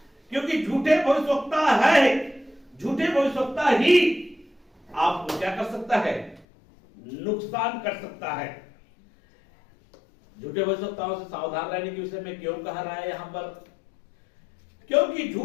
क्योंकि झूठे भविष्यवक्ता है, झूठे भविष्यवक्ता ही आपको क्या कर सकता है, नुकसान कर सकता है। झूठे भविष्यवक्ताओं से सावधान रहने के विषय में क्यों कहा रहा है यहां पर? क्योंकि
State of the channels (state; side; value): drops out; right; at 6.5 s